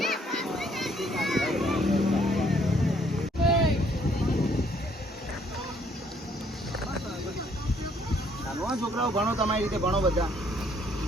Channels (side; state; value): both; normal; correlation 0.65